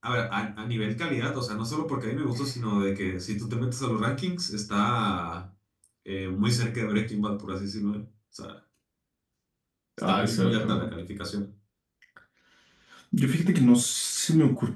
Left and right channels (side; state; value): both; identical; correlation 1.00